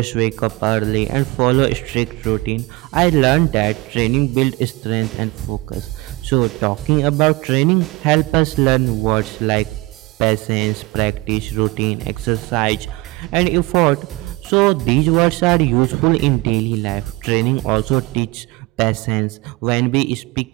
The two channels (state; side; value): quieter; left; 22.6 dB